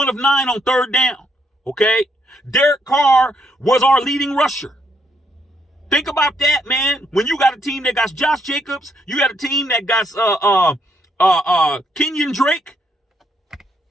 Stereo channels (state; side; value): normal; both; correlation 0.74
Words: third down, okay? Derek Carr was our leading rusher. Think about that, man. When you got a team that got Josh Jacobs, you got a team that got Kenyon Drake.